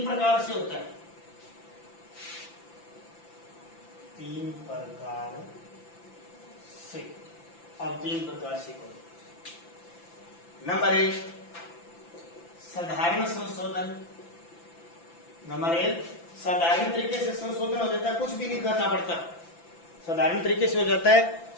प्रकार से होता है। 3 प्रकार से। अब 3 प्रकार से करो। नंबर 1 साधारण संशोधन। नंबर 1 साधारण तरीके से संशोधन हो जाता है, कुछ भी नहीं करना पड़ता, साधारण तरीके से हो जाता है,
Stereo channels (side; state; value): right; late; 5.9 ms